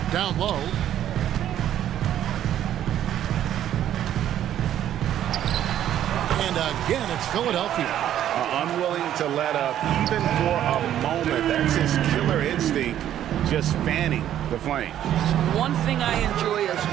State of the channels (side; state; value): left; quieter; 11.3 dB